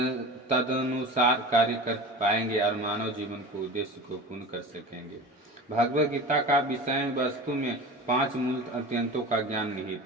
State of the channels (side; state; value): both; normal; correlation 0.33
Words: तदनुसार कार्य कर पाएंगे और मानव जीवन को उद्देश्य को पूर्ण कर सकेंगे। भगवत गीता का विषय वस्तु में 5 मूल अत्यंतों का ज्ञान